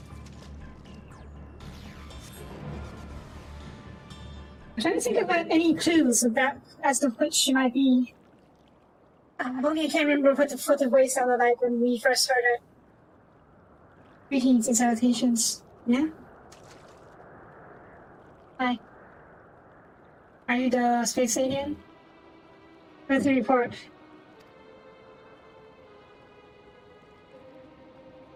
I'm trying to think about any clues about as to which she might be. Only I can't remember what the voice sounded like when we first heard it. Greetings and salutations. Yeah? Hi. Are you the space alien? Where's the report?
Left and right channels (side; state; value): both; identical; correlation 1.00